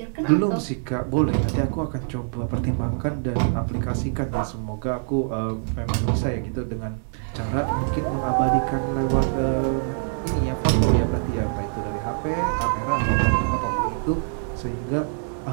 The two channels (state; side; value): silent; left; 62 dB below the other